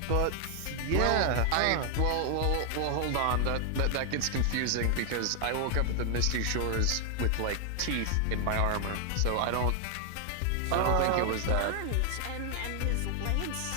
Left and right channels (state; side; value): different; both; correlation 0.00